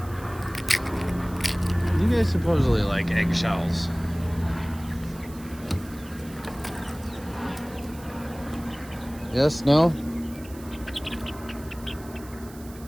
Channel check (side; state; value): right; noise; hiss, 20 dB below the sound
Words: You guys supposedly like eggshells. Yes, no?